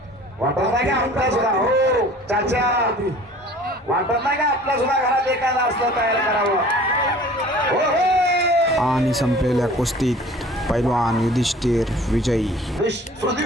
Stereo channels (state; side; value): normal; both; correlation 0.48